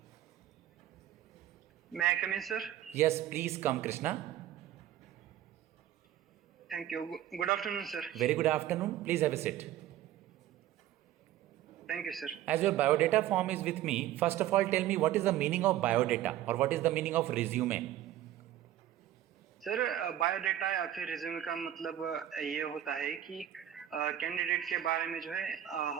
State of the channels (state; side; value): quieter; left; 12.4 dB